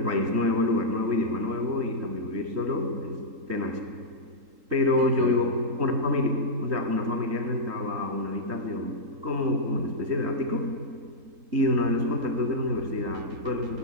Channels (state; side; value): late; left; 3.8 ms